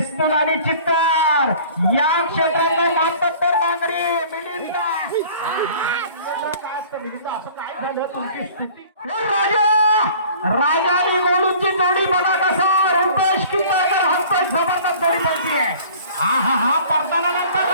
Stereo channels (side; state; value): both; inverted; correlation -0.48